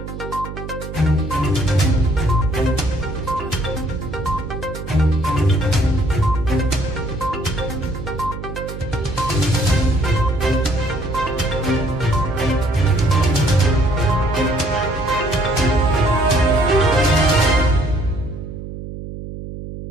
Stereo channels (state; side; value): noise; right; hum, 10 dB below the sound